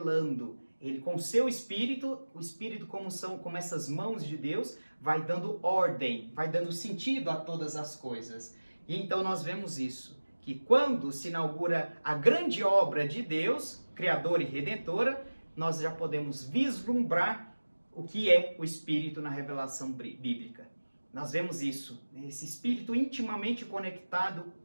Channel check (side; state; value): both; inverted; correlation -1.00